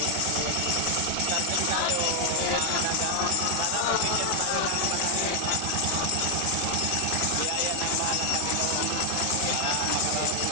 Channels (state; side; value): different; both; correlation 0.00